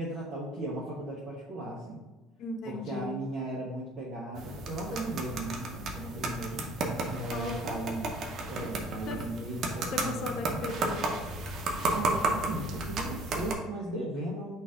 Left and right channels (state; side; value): normal; both; correlation 0.54